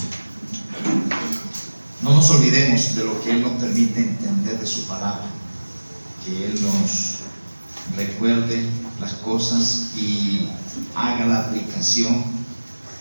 no nos olvidemos de lo que Él nos permite entender de su palabra, que Él nos recuerde las cosas y haga la aplicación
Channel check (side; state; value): both; inverted; correlation -1.00